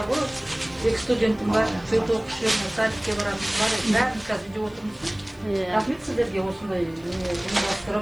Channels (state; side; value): noise; left; hiss, 29 dB below the sound